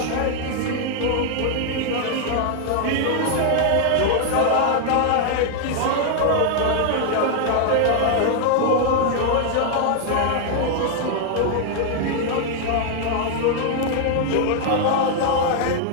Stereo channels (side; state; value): both; different; correlation 0.00